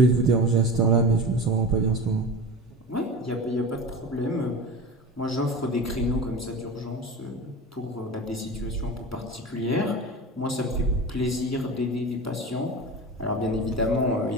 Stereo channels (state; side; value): normal; both; correlation 0.30